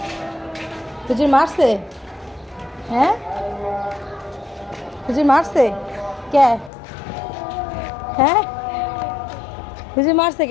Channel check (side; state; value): right; drops out; at 6.7 s